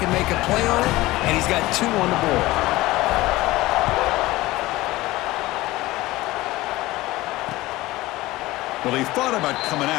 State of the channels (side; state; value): right; quieter; 18.5 dB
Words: make a play on it, and he's got 2 on the board. Well, he thought about coming